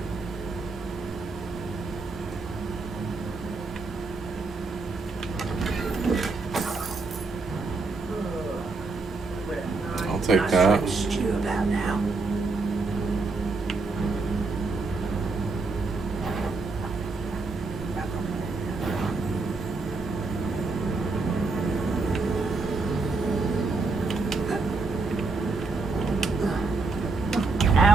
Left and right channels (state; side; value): quieter; left; 3.8 dB